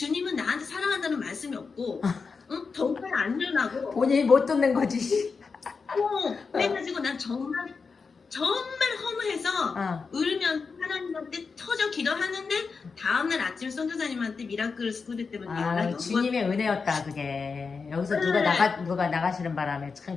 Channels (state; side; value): quieter; right; 4.9 dB